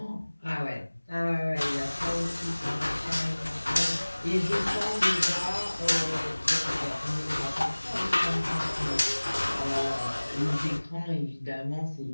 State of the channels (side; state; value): both; inverted; correlation -1.00